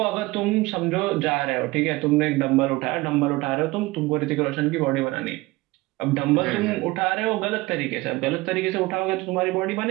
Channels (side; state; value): left; quieter; 20.9 dB